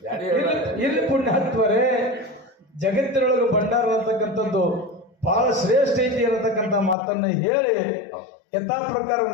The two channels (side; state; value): right; drops out; at 7.0 s